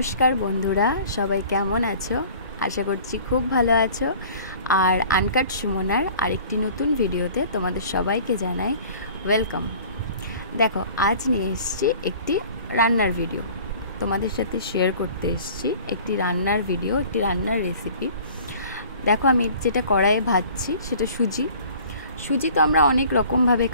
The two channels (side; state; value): both; inverted; correlation -0.48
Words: বন্ধুরা, সবাই কেমন আছো? আশা করছি খুব ভালো আছো। আর আনকাট সুমনার আরেকটি নতুন ভিডিওতে তোমাদের সবাইকে জানাই ওয়েলকাম। দেখো, আজ নিয়ে এসেছি একটি রান্নার ভিডিও, তোমাদের সাথে শেয়ার করতে এসেছি একটি রান্নার ভিডিও, একটি রান্নার রেসিপি। দেখো, আমি যেটা কড়াইয়ে ভাজছি সেটা সুজি তো আমরা অনেক রকমভাবে